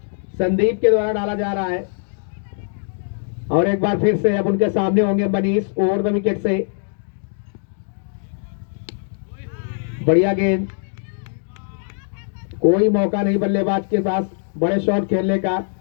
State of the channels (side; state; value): right; silent; digital silence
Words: संदीप के द्वारा डाला जा रहा है और एक बार फिर से अब उनके सामने होंगे मनीष ओवर द विकेट से। बढ़िया गेंद, कोई मौका नहीं बल्लेबाज के पास बड़े शॉट खेलने का।